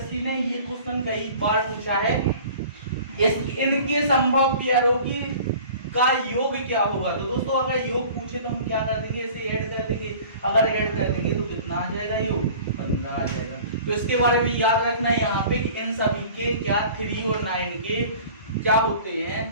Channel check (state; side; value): inverted; both; correlation -0.45